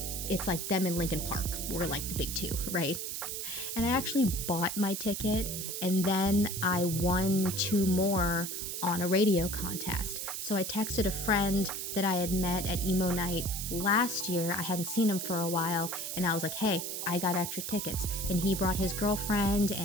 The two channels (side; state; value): right; noise; hiss, 4 dB below the sound